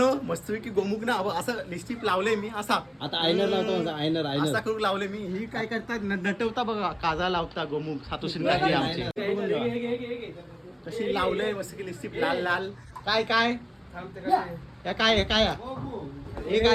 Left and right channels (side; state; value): both; identical; correlation 1.00